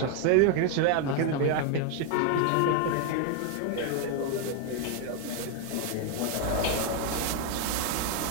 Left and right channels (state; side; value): different; both; correlation 0.01